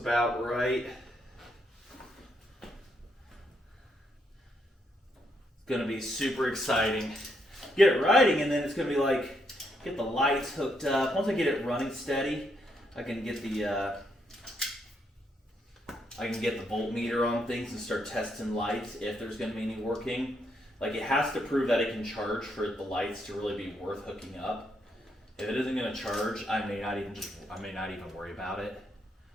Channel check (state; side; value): normal; both; correlation 0.77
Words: right. It's gonna be super exciting. Get it riding, and then it's gonna be like, get the lights hooked up. Once I get it running steady, I can get the voltmeter on things and start testing lights if there's going to be any working. Like, it has to prove that it can charge for the lights to really be worth hooking up. If it isn't going to charge, I may not even worry about it.